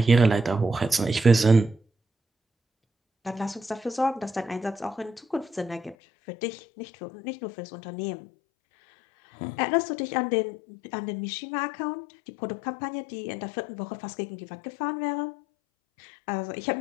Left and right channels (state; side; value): drops out; right; at 6.0 s